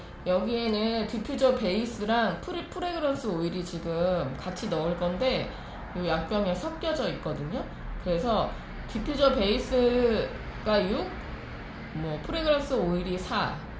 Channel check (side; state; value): both; identical; correlation 1.00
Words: 여기에는 디퓨저 베이스랑 프레그런스 오일이 지금 같이 넣을 건데 이 약병에 섞여져 있거든요. 그래서 디퓨저 베이스가 6, 프레그런스 오일이 4